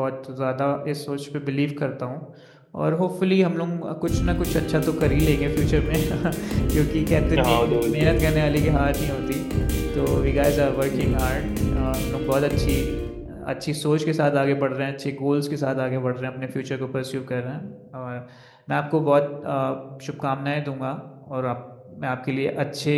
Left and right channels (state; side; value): identical; both; correlation 1.00